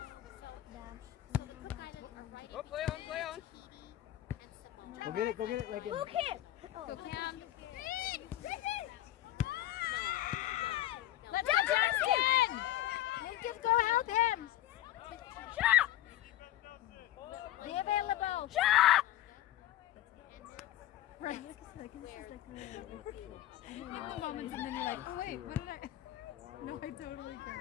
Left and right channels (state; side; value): quieter; right; 13.9 dB